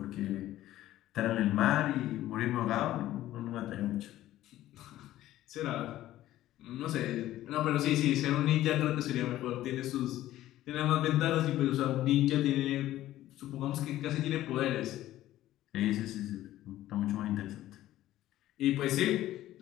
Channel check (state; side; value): quieter; right; 14.3 dB